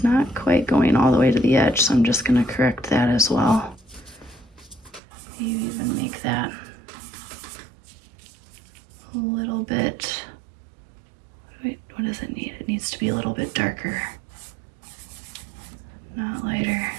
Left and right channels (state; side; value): drops out; left; at 5.0 s